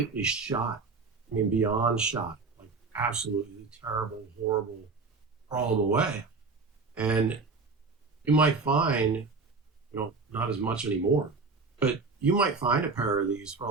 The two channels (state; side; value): quieter; left; 4.2 dB